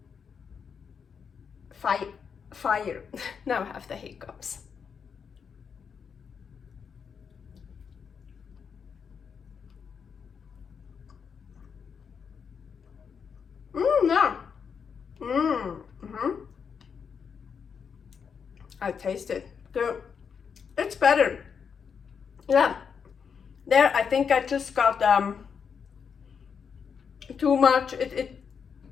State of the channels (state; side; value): quieter; right; 6.5 dB